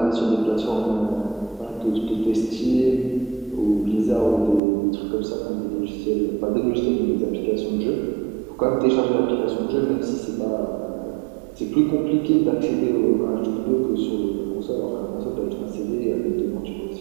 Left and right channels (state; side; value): drops out; left; at 4.6 s